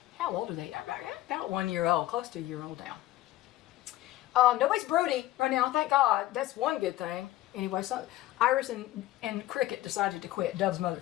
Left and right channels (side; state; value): right; quieter; 15.6 dB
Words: how old are they? About 1 year old, close to a year old now. Nobody's broody right now, thank God. That's one good thing. Anyway, so Iris and Cricket decided to quit. Dove's mother,